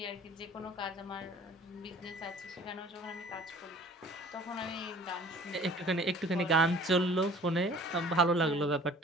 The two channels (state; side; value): normal; both; correlation 0.51